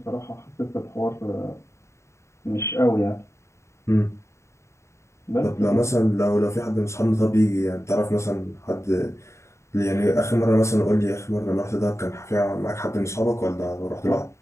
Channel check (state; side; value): late; right; 0.14 ms